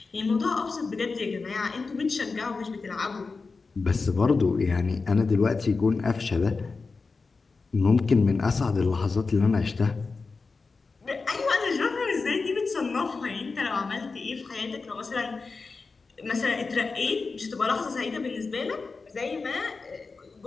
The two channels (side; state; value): right; quieter; 4.3 dB